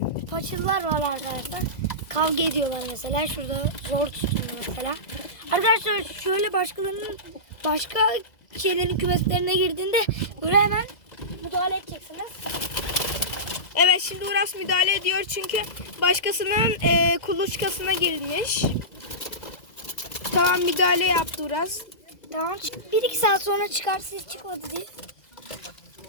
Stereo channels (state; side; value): late; right; 2.0 ms